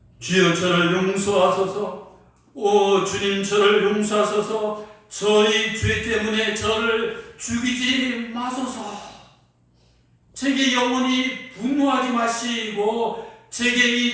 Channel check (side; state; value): both; identical; correlation 1.00